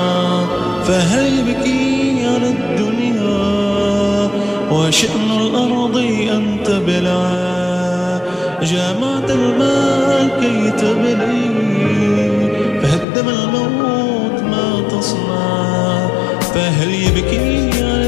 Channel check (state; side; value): drops out; right; at 13.1 s